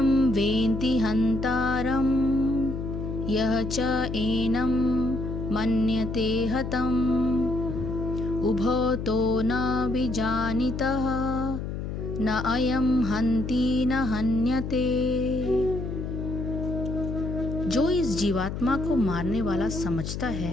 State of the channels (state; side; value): noise; left; hum, 5 dB below the sound